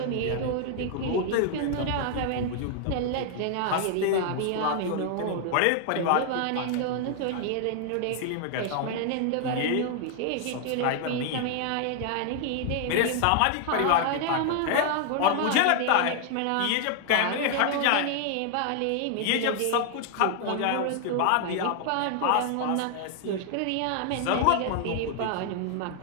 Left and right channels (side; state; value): both; different; correlation 0.00